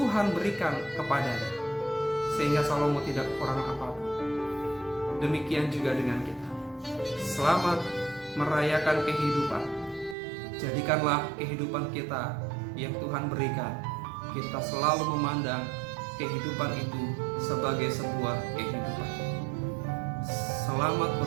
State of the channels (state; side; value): drops out; left; at 10.2 s